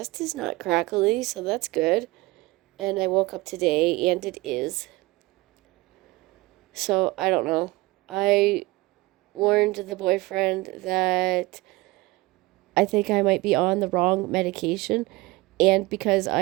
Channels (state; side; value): quieter; left; 21.6 dB